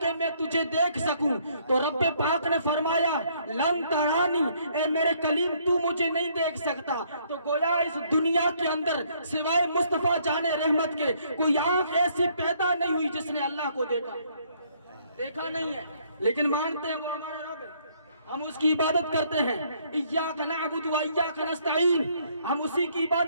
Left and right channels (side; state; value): both; inverted; correlation -0.66